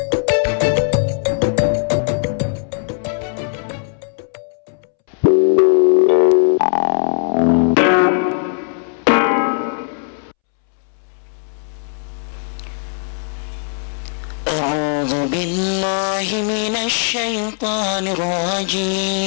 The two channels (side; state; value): right; silent; 67 dB below the other